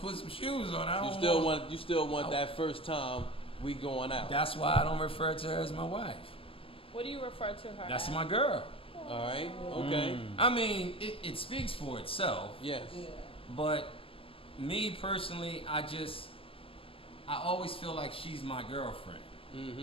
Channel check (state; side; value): late; right; 0.27 ms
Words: put some shoes on. I You don't still want that first time we going out. That's why I don't refer to her as my wife. What do you refer to her? That's as? my girl. All right. Okay. I mean, it speaks for itself. Yes. Yeah. But me personally, I always feel like she's my girlfriend,